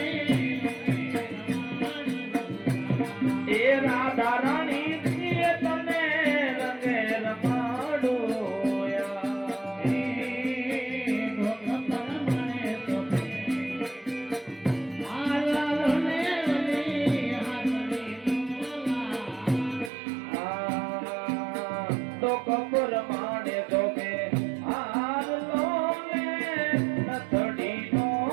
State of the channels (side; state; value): left; drops out; at 19.9 s